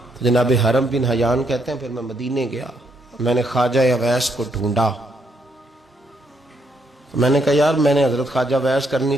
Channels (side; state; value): both; normal; correlation 0.75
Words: جناب حرم بن حیان کہتے ہیں پھر میں مدینے گیا، میں نے خواجہ اویس کو ڈھونڈا. میں نے کہا یار میں نے حضرت خواجہ اویس کرنی